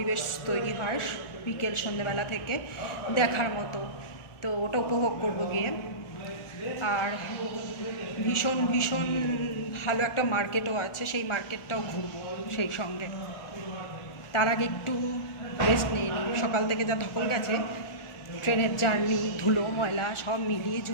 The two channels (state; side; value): late; right; 1.4 ms